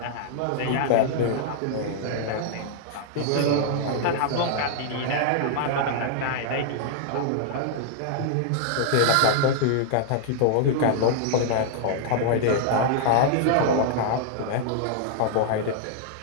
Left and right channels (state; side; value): different; both; correlation -0.01